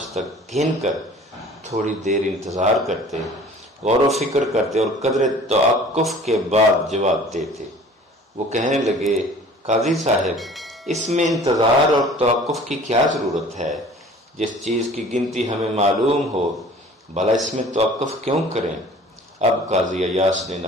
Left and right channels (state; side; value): normal; both; correlation 0.48